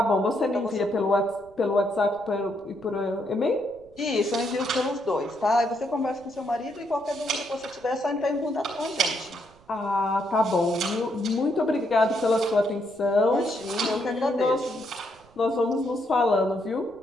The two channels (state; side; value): noise; right; rumble, 28 dB below the sound